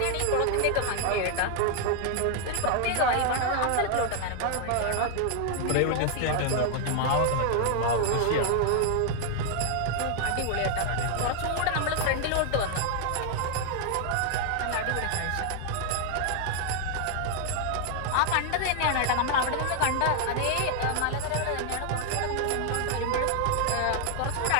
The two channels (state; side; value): different; both; correlation 0.00